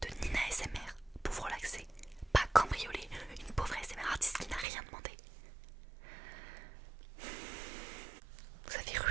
Nina ASMR pour vous relaxer. Pas cambrioler une pauvre ASMR artiste qui n'a rien demandé. Vous avez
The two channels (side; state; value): left; drops out; at 4.7 s